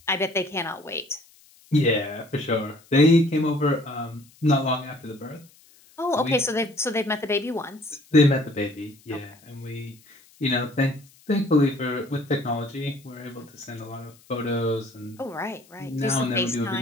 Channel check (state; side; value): noise; left; hiss, 28 dB below the sound